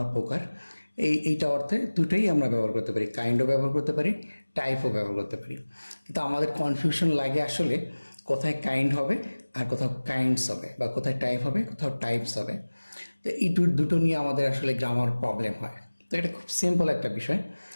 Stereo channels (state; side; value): inverted; both; correlation -1.00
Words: প্রকার, এইটা অর্থে দুটোই আমরা ব্যবহার করতে পারি। কাইন্ডও ব্যবহার করতে পারি, টাইপও ব্যবহার করতে পারি। কিন্তু আমাদের কনফিউশন লাগে আসলে কোথায় কাইন্ড হবে আর কোথাও কাইন্ডস হবে, বা কোথায় টাইপ হবে কোথাও টাইপস হবে। তো এই দুটো নিয়ে আমাদের আসলে গ্রামার প্রবলেম হয়। তো এটা খুব সিম্পল একটা বিষয়।